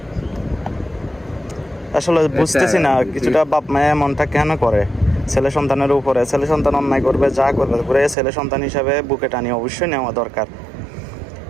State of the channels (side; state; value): left; drops out; at 8.2 s